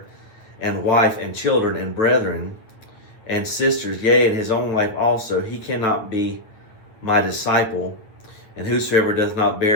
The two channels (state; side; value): late; right; 9.1 ms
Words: and wife and children and brethren and sisters, yea, and his own life also, he cannot be my disciple. And whosoever does not